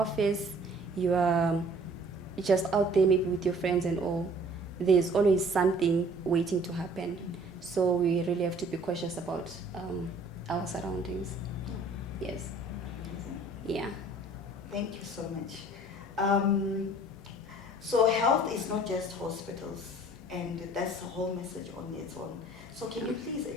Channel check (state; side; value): normal; both; correlation 0.53